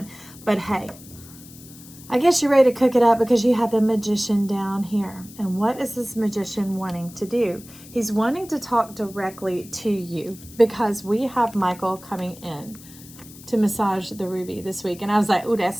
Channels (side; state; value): left; noise; hiss, 19 dB below the sound